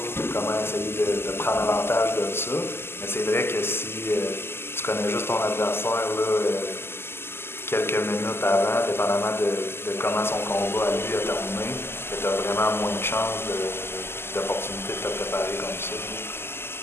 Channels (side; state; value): right; late; 0.12 ms